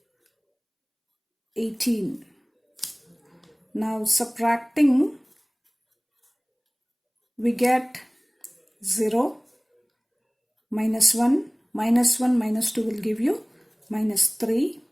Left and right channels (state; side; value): identical; both; correlation 1.00